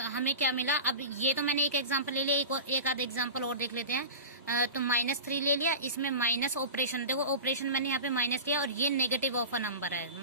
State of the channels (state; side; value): inverted; both; correlation -0.30